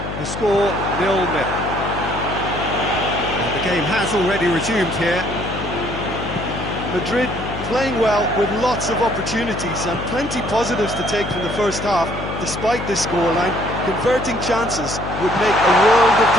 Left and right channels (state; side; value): noise; left; hum, 7 dB below the sound